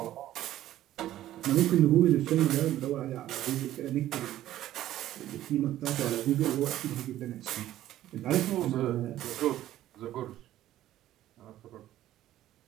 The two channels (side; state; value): left; quieter; 13.5 dB